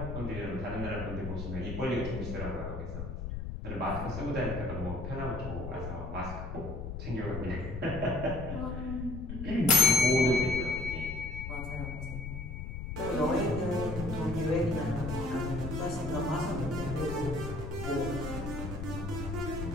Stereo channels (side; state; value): left; noise; rumble, 6 dB below the sound